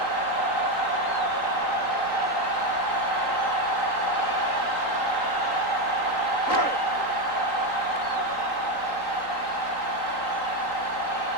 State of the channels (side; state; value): right; late; 3.8 ms